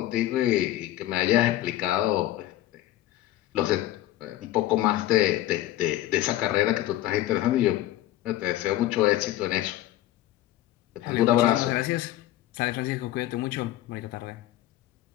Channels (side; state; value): right; quieter; 14.6 dB